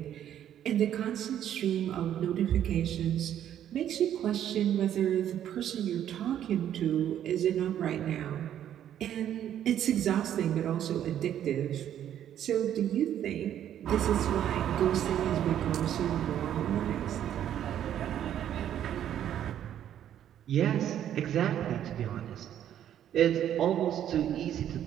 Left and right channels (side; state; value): left; quieter; 10.6 dB